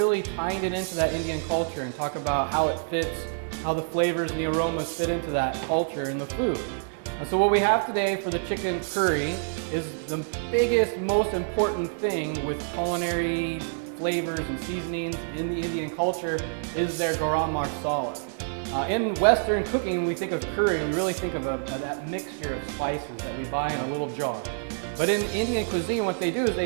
tying it into that Indian culture and talk about how it fits, how the flavors and the aromas fit into that culture in the food. So what we have today for the chicken curry is the biggest, most important thing with culinary flavors and seasonings in the Indian culture is their garam masala. In Western cooking, when we think of curry, we really think of that mixture of spices that we buy in a little jar. But in Indian cuisine, what they do is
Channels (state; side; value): silent; left; 60 dB below the other